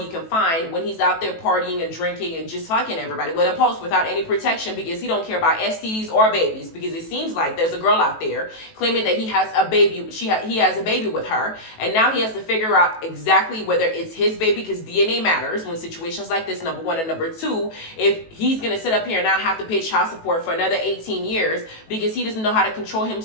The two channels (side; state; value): right; late; 18 ms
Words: can find when he's out there partying and drinking and just fucking everybody with a post without any protection, because he don't care about STDs or babies, because it seems like there's a girl out there claiming that he has a baby, he has a baby with her, and now he has to figure out exactly whether it's his baby, because DNA matters when situations like this, number one, and number two, if he's gonna sit up here and now have to pay child support for another 18 years because he doesn't know how to control